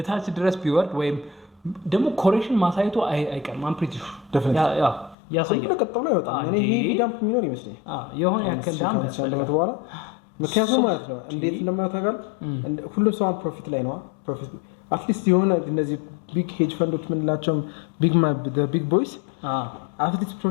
ድረስ ቢወርድ ወይም ደግሞ ኮሬክሽን ማሳየቱ አይቀርም አም ፕሪቲ ያ ያሳያል ለቀጣው ነው ይወጣል እኔ ይሄ ዳምፕ የሚኖር ይመስለኝ የሆነ ያከል ዳምፕ ያለበት በኋላ ምክንያቱም ማለት ነው እንዴት እንደማታጋል ሁሉም ሰው ፕሮፊት ላይ ነው ፕሮፊት አትሊስት የሆነ እነዚህ ቢግ ሄጅ ፈንዶች ምንላቸው ቢግ ቦይስ አትሊስት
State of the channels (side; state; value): right; drops out; at 5.2 s